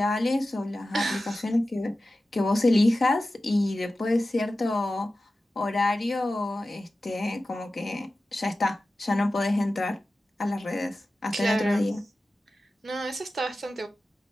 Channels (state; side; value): normal; both; correlation 0.94